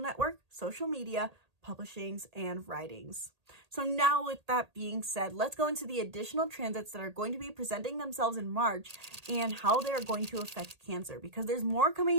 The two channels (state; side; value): late; left; 1.8 ms